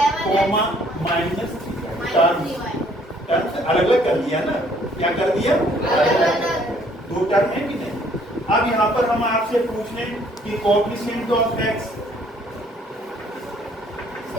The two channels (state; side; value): normal; both; correlation 0.62